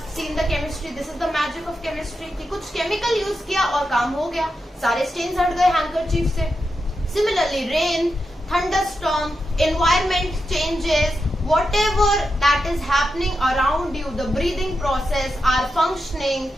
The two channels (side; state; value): both; normal; correlation 0.88